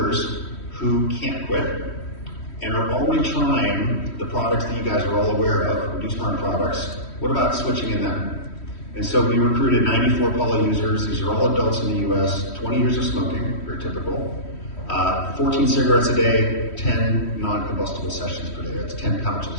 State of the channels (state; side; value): late; right; 3.1 ms